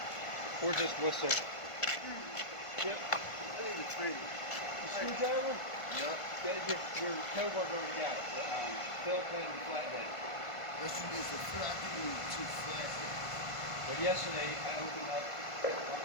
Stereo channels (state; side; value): late; right; 1.5 ms